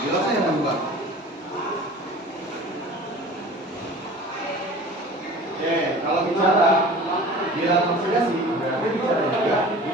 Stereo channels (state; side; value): normal; both; correlation 0.41